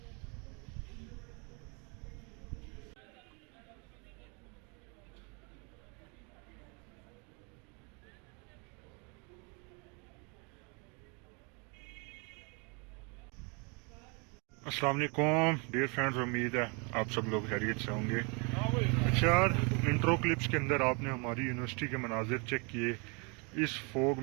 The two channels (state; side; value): quieter; left; 33.0 dB